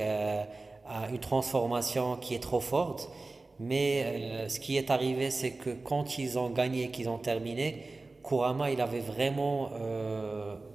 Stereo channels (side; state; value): left; quieter; 3.4 dB